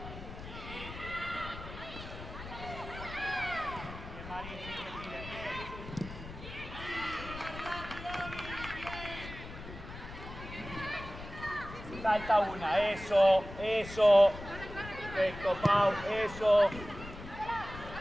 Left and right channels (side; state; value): left; noise; rumble, 12 dB below the sound